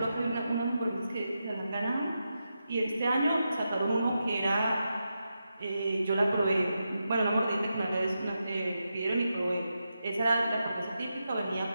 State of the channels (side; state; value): both; inverted; correlation -0.88